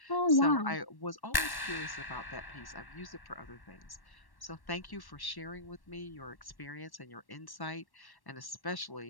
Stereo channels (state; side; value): late; right; 1.1 ms